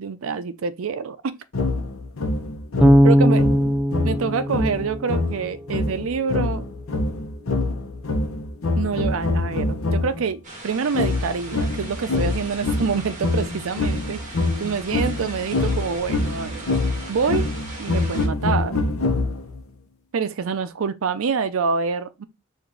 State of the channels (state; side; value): normal; both; correlation 0.47